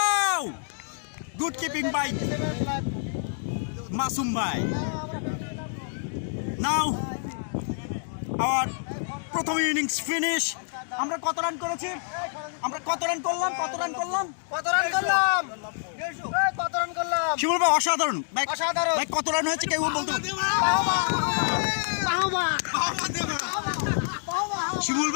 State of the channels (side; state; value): right; silent; digital silence